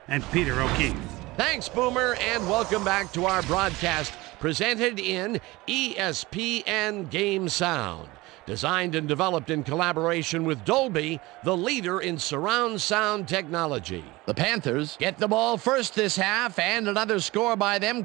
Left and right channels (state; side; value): quieter; left; 20.9 dB